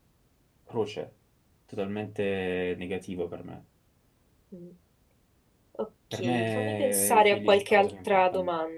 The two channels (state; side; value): identical; both; correlation 1.00